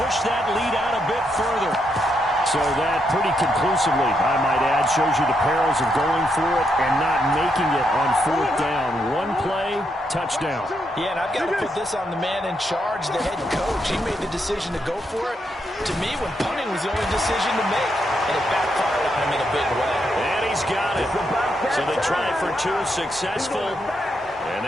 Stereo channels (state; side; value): normal; both; correlation 0.80